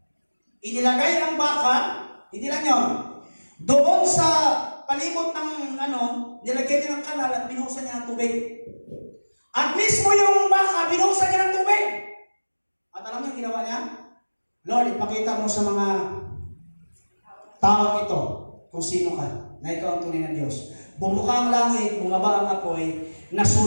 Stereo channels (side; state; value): both; inverted; correlation -1.00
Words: inilagay ang baka, hindi lang yun, doon sa palibot ng nilagay niya ng kanal at binuhusan niya ng tubig. At mismo yung baka, binuhusan niya ng tubig. At alam niyo yung ginawa niya? Lord, ipakita mo sa mga tao ito kung sino ka, na ikaw ang tunay na Diyos. Bumuka ang langit, bumaba ang apoy,